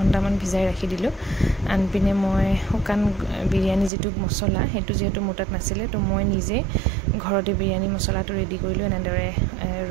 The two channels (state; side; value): drops out; left; at 3.9 s